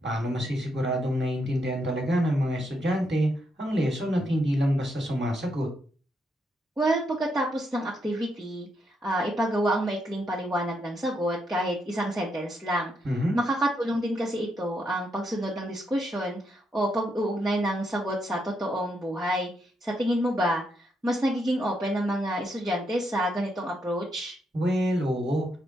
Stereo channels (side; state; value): both; normal; correlation 0.79